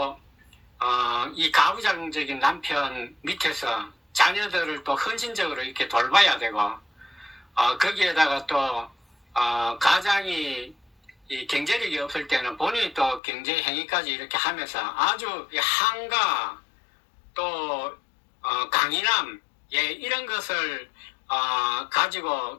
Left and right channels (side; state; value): right; drops out; at 13.2 s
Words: 이 가부장적인 남편 밑에서 자녀들을 또 헌신적으로 이렇게 돌봐야 되고 거기에다가 또 가장이 이 경제력이 없을 때는 본인이 또 경제 행위까지 이렇게 하면서 아주 한가 또 강인함 예, 이런 것을